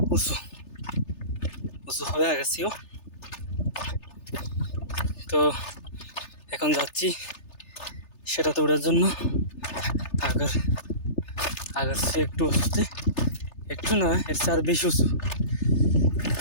উঁচু উঁচু হবে আগের চেয়েও। তো এখন যাচ্ছি সেটাতে ওঠার জন্য। আগের আগের চেয়ে একটু উঁচুতে, একটু না এর চেয়ে আর বেশি উঁচু,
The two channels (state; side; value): late; right; 3.3 ms